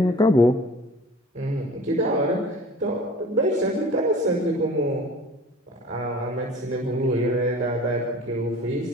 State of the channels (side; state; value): both; normal; correlation 0.44